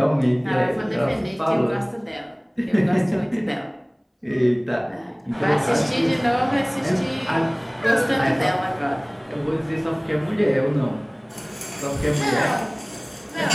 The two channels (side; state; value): both; identical; correlation 1.00